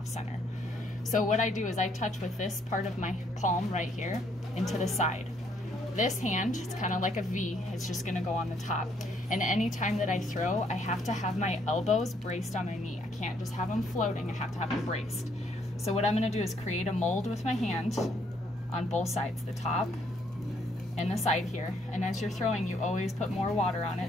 center. So what I do is I touch with this part of my palm right here into the side. This hand, it's kind of like a V, it's just gonna go on the top. And any time that I throw, I have to have my elbows braced on my knee. I can't just have them floating, I have to have them braced. So what I'm gonna do is create a mold with my hand on both sides, the top and the side here. And as you're throwing, you always put more water on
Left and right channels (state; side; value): normal; both; correlation 0.69